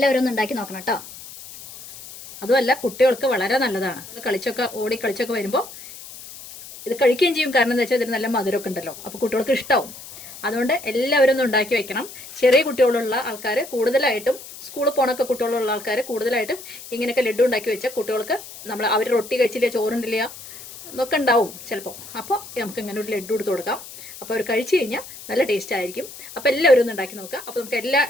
ഒന്ന് ഉണ്ടാക്കി നോക്കണം കേട്ടോ. അതുമല്ല, കുട്ടികൾക്ക് വളരെ നല്ലതാണ്. ഓടി കളിച്ചൊക്കെ വരുമ്പോൾ ഇത് കഴിക്കുകയും ചെയ്യും. കാരണം എന്താ വെച്ചാൽ ഇതിന് നല്ല മധുരമൊക്കെ ഉണ്ടല്ലോ. അപ്പോൾ കുട്ടികൾക്ക് ഇഷ്ടമാവും. അതുകൊണ്ട് എല്ലാവരും ഒന്ന് ഉണ്ടാക്കി വെക്കണം. ചെറിയ കുട്ടികളുള്ള ആൾക്കാർ കൂടുതലായിട്ടും, സ്കൂളിൽ പോണൊക്കെ കുട്ടികളുള്ള ആൾക്കാർ കൂടുതലായിട്ടും ഇങ്ങനെയൊക്കെ ലഡ്ഡു ഉണ്ടാക്കി വെച്ചാൽ കുട്ടികൾക്ക് അവർ റൊട്ടി കഴിച്ചില്ല, ചോറുണ്ടില്ല എന്നൊക്കെ ഉണ്ടാവും ചിലപ്പോൾ. അപ്പോൾ നമുക്ക് ഇങ്ങനെ ഒരു ലഡ്ഡു എടുത്ത് കൊടുക്കാം. അപ്പോൾ അവർ കഴിച്ചു കഴിഞ്ഞാൽ നല്ല ടേസ്റ്റ് ആയിരിക്കും. അപ്പോൾ എല്ലാവരും ഒന്ന് ഉണ്ടാക്കി നോക്കുക. അപ്പോൾ നമുക്ക് എല്ലാ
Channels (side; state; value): left; noise; hiss, 15 dB below the sound